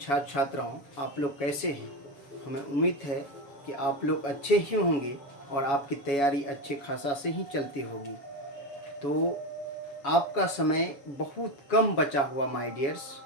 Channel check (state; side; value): late; right; 7.1 ms